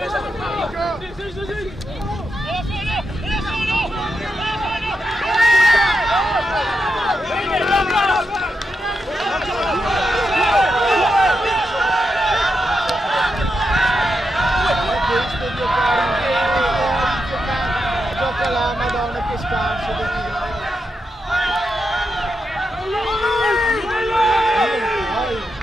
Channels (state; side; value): normal; both; correlation 0.86